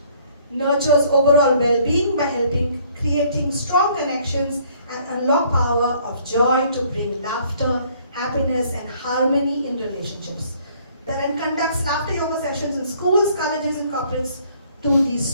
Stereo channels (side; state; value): both; inverted; correlation -0.61